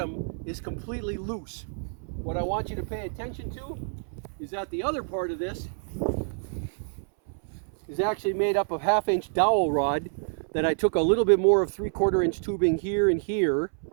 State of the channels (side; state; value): left; silent; 60 dB below the other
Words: is completely loose. What I want you to pay attention to is that the other part of this is actually made up of 1/2 inch dowel rod that I took a little bit more of 3/4 inch tubing here and here